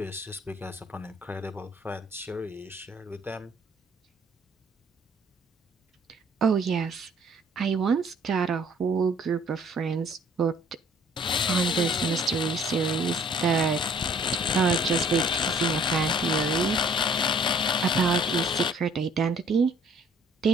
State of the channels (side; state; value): both; normal; correlation 0.57